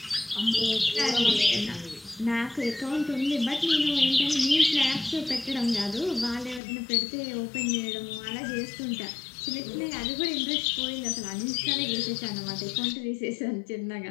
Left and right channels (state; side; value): drops out; right; at 6.6 s